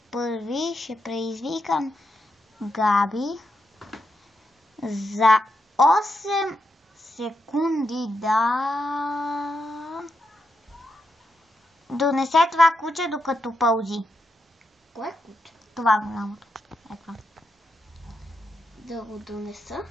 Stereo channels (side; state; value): both; normal; correlation 0.84